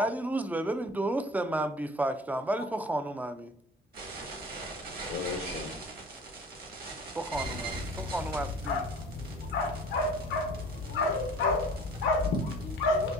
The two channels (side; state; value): both; normal; correlation 0.45